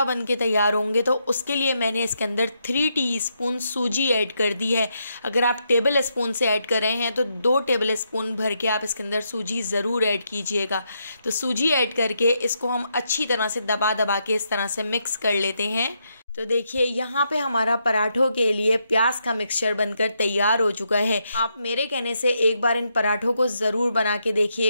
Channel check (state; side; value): inverted; both; correlation -0.80